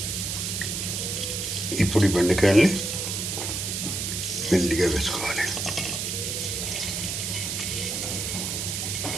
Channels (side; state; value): right; noise; hiss, 2 dB below the sound